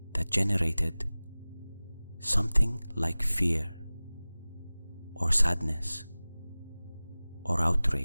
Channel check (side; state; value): both; inverted; correlation -0.99